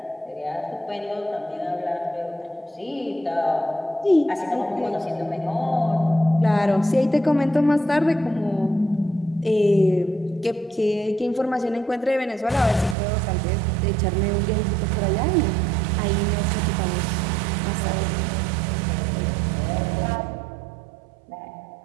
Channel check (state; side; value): drops out; left; at 13.0 s